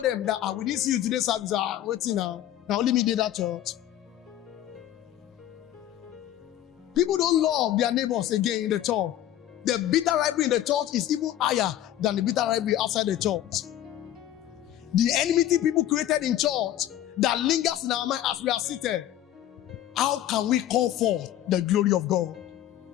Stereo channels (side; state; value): right; quieter; 12.4 dB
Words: that we didn't see you today's service. Waiting now. Now only me did that church. People don't love their neighbors again in the church. The bitter rivalry in the church is even higher than the bitter rivalry outside the church. The enmity people created in church that lingers in our mind as we are seated. How can we call forth the glory of God?